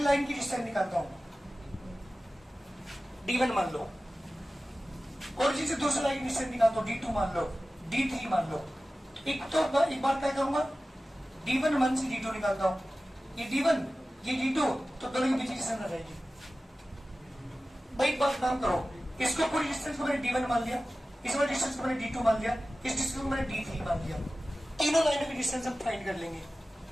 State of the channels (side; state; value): both; normal; correlation 0.96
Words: लाइन की डिस्टेंस निकालता हूं, D1 मान लो। ओरिजिन से दूसरी लाइन की डिस्टेंस निकालता हूं, D2 मान लो, D3 मान लो। एक बार क्या करूंगा, D1 1 से D2 निकालता हूं। ये D1 ये D2, तो दोनों के बीच की डिस्टेंस आ जाएगी। भाई एक बात काम करो, इसको पूरी डिस्टेंस को मैंने D1 मान लिया, इस वाली डिस्टेंस को मैंने D2 मान लिया, इस डिस्टेंस को मैंने D3 मान लिया। तीनों लाइनों की डिस्टेंस हम फाइंड कर लेंगे।